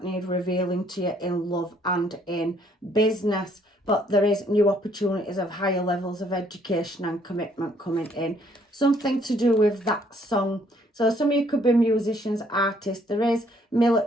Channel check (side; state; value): both; normal; correlation 0.65